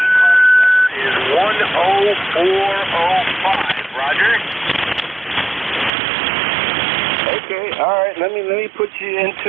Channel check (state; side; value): drops out; left; at 5.9 s